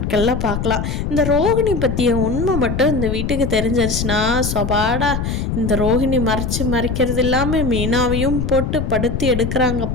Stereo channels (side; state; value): left; noise; rumble, 2 dB below the sound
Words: பார்க்கலாம். இந்த ரோஹிணி பற்றிய உண்மை மட்டும் இந்த வீட்டுக்கு தெரிஞ்சிருச்சுன்னா சொபாடா, இந்த ரோஹிணி மறைக்கிறது இல்லாமல் மீனாவையும் போட்டு படுத்தி